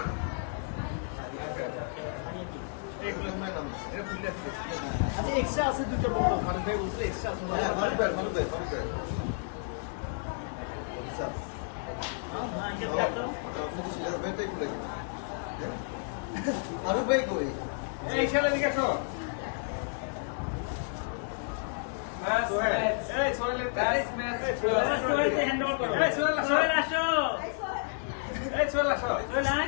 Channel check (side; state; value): right; silent; digital silence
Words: এক্সট্রা আছে দুটো বড় মানে ভাই বুঝলে এক্সট্রা আছে আরো ভাই কই এই ছেলে দিকে আসো